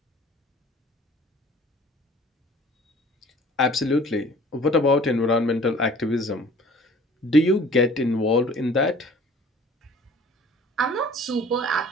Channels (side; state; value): both; normal; correlation 0.50